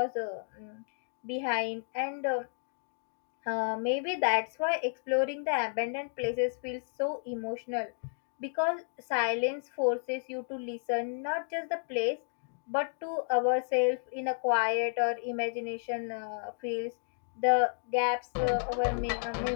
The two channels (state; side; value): silent; right; digital silence